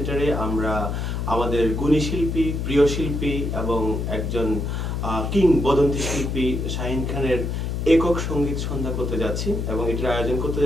আমরা আমাদের গুণী শিল্পী, প্রিয় শিল্পী এবং একজন কিংবদন্তি শিল্পী শাহিন খানের একক সঙ্গীত সন্ধ্যা করতে যাচ্ছি এবং এটির আয়োজন করতে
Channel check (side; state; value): left; noise; hum, 2 dB below the sound